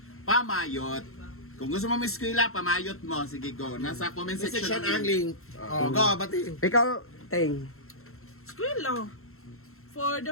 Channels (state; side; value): late; right; 0.62 ms